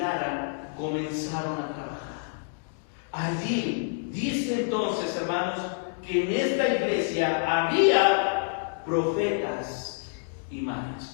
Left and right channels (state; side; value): silent; right; digital silence